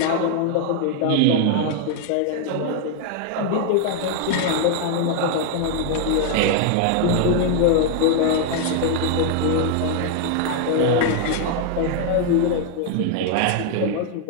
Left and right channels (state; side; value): different; both; correlation 0.01